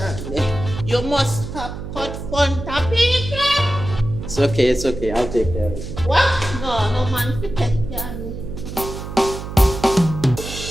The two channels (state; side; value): noise; right; hum, 9 dB below the sound